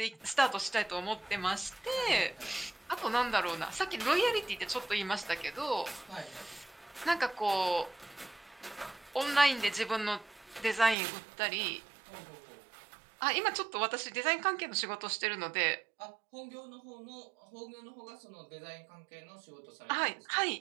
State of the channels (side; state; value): left; drops out; at 11.0 s